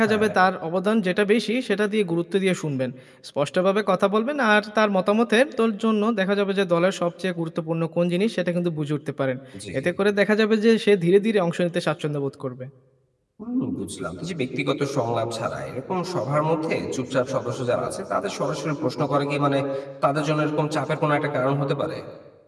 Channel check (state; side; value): identical; both; correlation 1.00